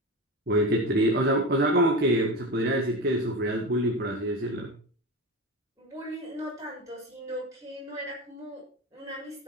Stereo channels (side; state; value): both; normal; correlation 0.24